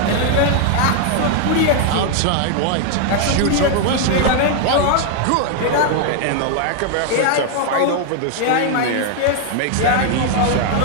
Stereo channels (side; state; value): both; different; correlation 0.00